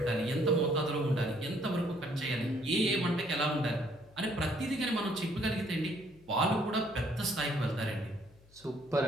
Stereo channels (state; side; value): noise; left; hum, 26 dB below the sound